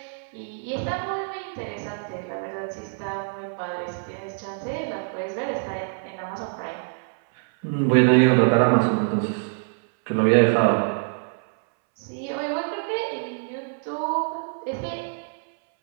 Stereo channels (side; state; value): left; silent; 62 dB below the other